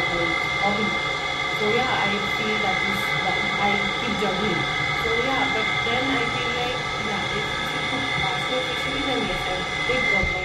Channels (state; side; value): identical; both; correlation 1.00